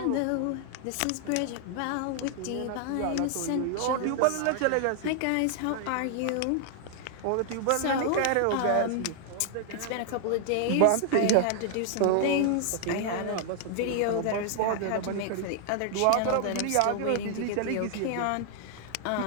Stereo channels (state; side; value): different; both; correlation 0.00